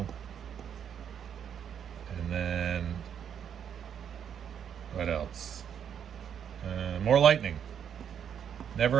And then what else? More lightning.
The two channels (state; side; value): quieter; left; 8.4 dB